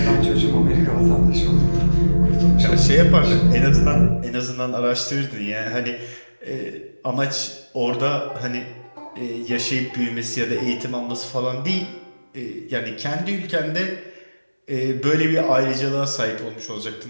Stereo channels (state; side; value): inverted; both; correlation -1.00